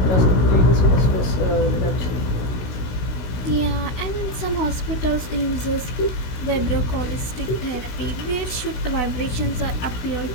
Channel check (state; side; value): late; right; 16 ms